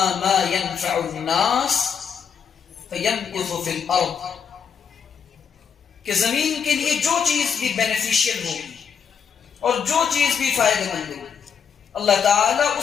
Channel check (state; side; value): quieter; right; 7.0 dB